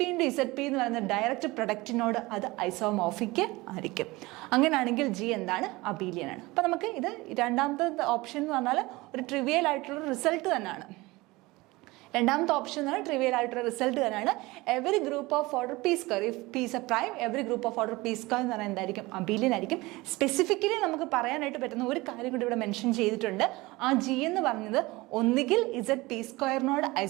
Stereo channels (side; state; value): left; quieter; 21.5 dB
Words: × ZP എന്ന് പറയുന്ന ഡയറക്റ്റ് പ്രൊഡക്റ്റിനോട് അത് ഐസോമോർഫിക് ആയിരിക്കും. അങ്ങനെയാണെങ്കിൽ G എന്താണ്? അബീലിയൻ ആണ്. അപ്പം നമുക്ക് ഇത് രണ്ടാമത്തെ ഓപ്ഷൻ എന്ന് പറഞ്ഞാൽ ഒരു ട്രിവിയൽ ആയിട്ടുള്ള റിസൾട്ട് തന്നെയാണ്. രണ്ടാമത്തെ ഓപ്ഷൻ എന്ന് പറഞ്ഞാൽ ട്രിവിയൽ ആയിട്ടുള്ള റിസൾട്ട് തന്നെയാണ്. Every group of order P square, if P is a prime, every group of order P square എന്ന് പറഞ്ഞാൽ എന്തായിരിക്കും? അബീലിയൻ ആയിരിക്കും. സ്പെസിഫിക്കലി നമുക്ക് പറയാനായിട്ട് പറ്റുന്ന ഒരു കാര്യം കൂടി ഇവിടെ മെൻഷൻ ചെയ്തിട്ടുണ്ട്. ആ G എന്ന് പറഞ്ഞത് ഒന്നുകിൽ ZP സ്ക്വയറിനോട്